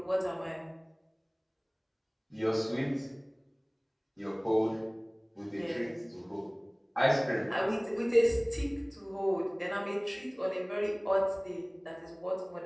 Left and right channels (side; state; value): both; identical; correlation 1.00